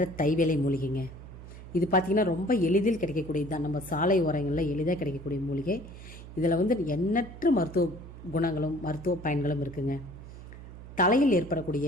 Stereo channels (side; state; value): right; noise; hum, 14 dB below the sound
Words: தைவேலை மூலிகைங்க. இது பார்த்திங்கன்னா ரொம்ப எளிதில் கிடைக்கக்கூடியது தான். நம்ம சாலை ஓரங்களில் எளிதாக கிடைக்கக்கூடிய மூலிகை. இதில் எண்ணற்ற மருத்துவ குணங்களும் மருத்துவ பயன்களும் இருக்குங்க. தலையில்